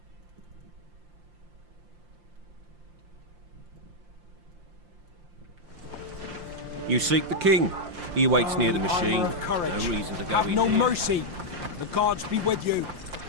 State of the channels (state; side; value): late; left; 5.7 ms